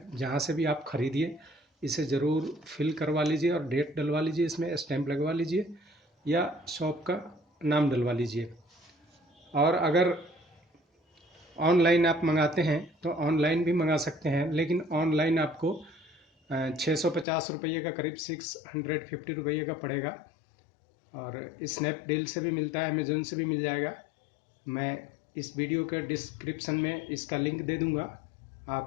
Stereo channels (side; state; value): right; drops out; at 17.2 s